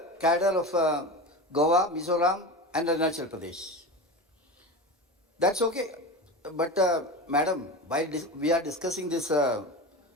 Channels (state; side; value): normal; both; correlation 0.27